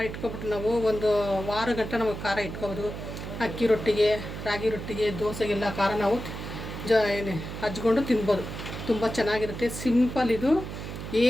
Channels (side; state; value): right; noise; hum, 8 dB below the sound